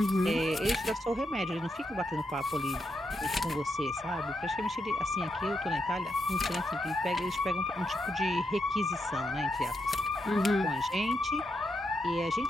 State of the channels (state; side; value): normal; both; correlation 0.82